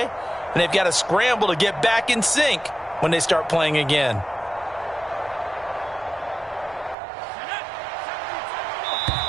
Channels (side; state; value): left; drops out; at 7.0 s